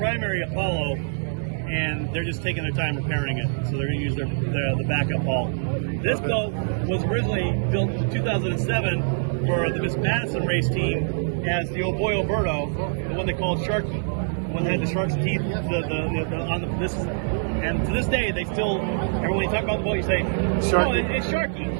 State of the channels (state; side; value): silent; left; 58 dB below the other